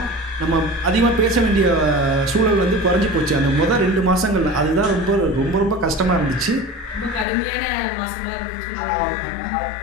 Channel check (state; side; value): drops out; right; at 7.2 s